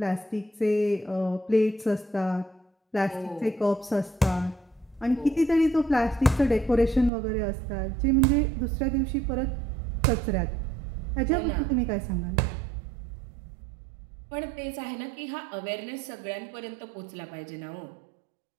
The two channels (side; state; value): left; drops out; at 7.1 s